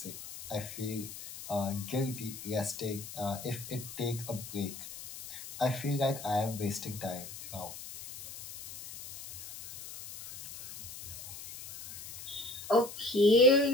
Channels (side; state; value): left; noise; hiss, 12 dB below the sound